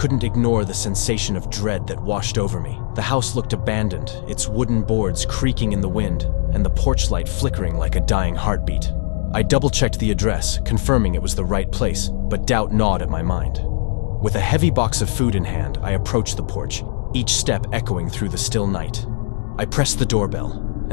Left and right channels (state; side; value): silent; right; digital silence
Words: ignore the sensation of dread that washed over me. The house looked abandoned, its wooden boards creaking in the wind, and the porch light flickering like a dying heartbeat. I double-checked the address, confirming it was the right place, but doubt gnawed at my mind. With a heavy box of food in hand, I approached the porch, each step echoing through the still night. I pressed the doorbell,